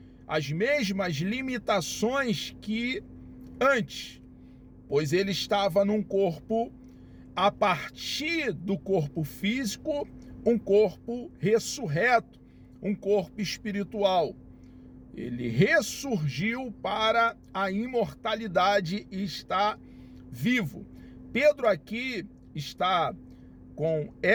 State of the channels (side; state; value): both; identical; correlation 1.00